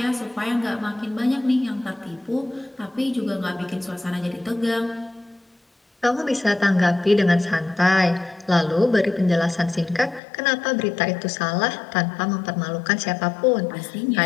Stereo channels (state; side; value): drops out; right; at 10.2 s